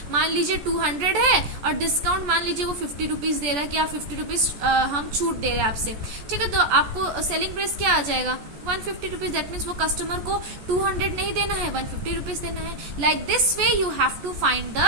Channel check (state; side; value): late; left; 14 ms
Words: मान लीजिए 200 है और डिस्काउंट मान लीजिए वो 50 रुपीज दे रहा है कि आप 50 रुपीज हम छूट दे रहे हैं आपसे, ठीक है। तो आपको सेलिंग प्राइस क्या आ जाएगा 150 रुपीज। दैट मीन्स वो कस्टमर को 200 नहीं देना है, 150 रुपीज देना है। Like this way you have to find